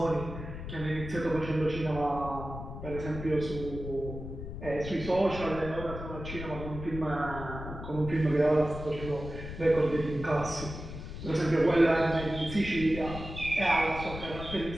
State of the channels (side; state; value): left; noise; rumble, 9 dB below the sound